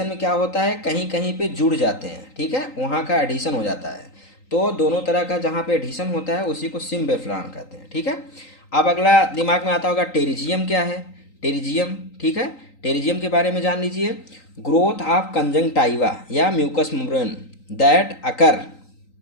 में क्या होता है, कहीं कहीं पे जुड़ जाते हैं, ठीक है, वहाँ का एडिशन हो जाता है। तो दोनों तरह का जहाँ पे एडिशन होता है उसी को सिम्ब्लिफरान कहते हैं, ठीक है। अब अगला दिमाग में आता होगा टेरिजियम क्या है, टेरिजियम, ठीक है, टेरिजियम के बारे में जान लीजिए। ग्रोथ ऑफ कंजंक्टाइवा या mucous membrane that occur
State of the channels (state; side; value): late; right; 3.9 ms